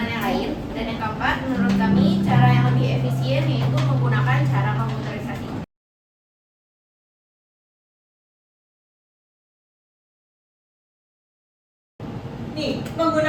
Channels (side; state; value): both; identical; correlation 1.00